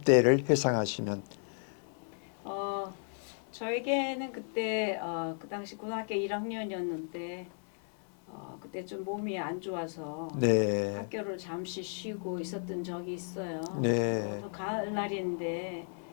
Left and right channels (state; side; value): silent; right; 55 dB below the other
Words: 회상하시면 저에게는 그때 그 당시 고등학교 1학년이었는데 그때 좀 몸이 안 좋아서 네. 학교를 잠시 쉬고 있었던 적이 있어요. 네. 또 가을날인데